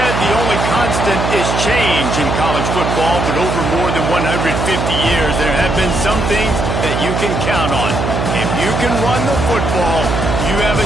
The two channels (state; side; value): noise; right; hum, 1 dB below the sound